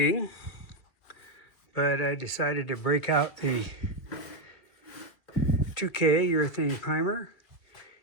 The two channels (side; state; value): right; late; 2.4 ms